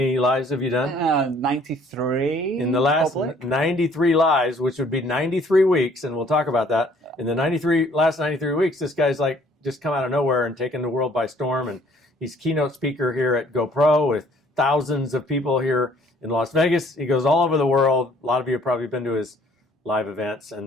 lives have you done? 93. In the last public. 93 lives, which would be 93 weeks, and we'll talk about that. In the last 93 weeks, this guy's just come out of nowhere and taken the world by storm, and he's keynote speaker here at GoPro with thousands of people here in Las Vegas. He goes all over the world. A lot of you have probably been to his live events,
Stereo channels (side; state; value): both; normal; correlation 0.58